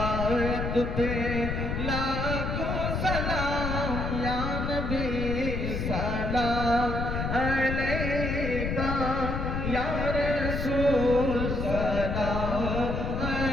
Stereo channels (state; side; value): noise; left; rumble, 2 dB below the sound